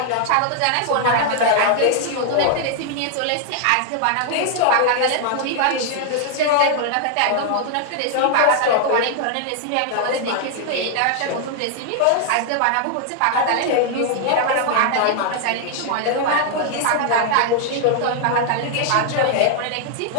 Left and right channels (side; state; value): both; different; correlation 0.00